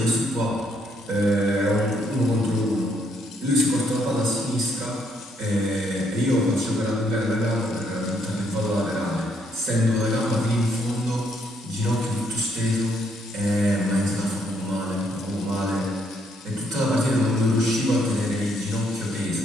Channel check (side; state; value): both; normal; correlation 0.71